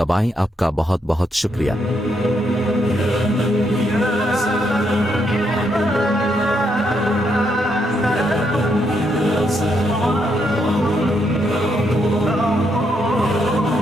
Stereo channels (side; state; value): both; normal; correlation 0.77